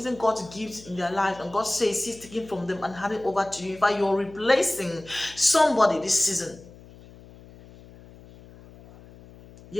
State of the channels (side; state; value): left; noise; hum, 21 dB below the sound